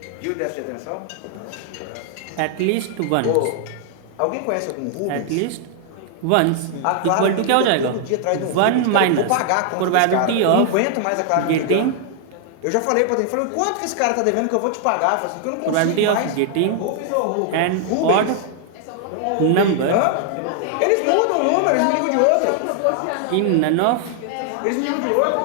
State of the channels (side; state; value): both; different; correlation 0.00